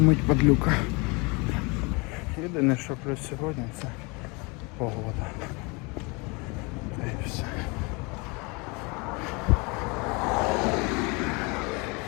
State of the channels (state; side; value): quieter; right; 28.6 dB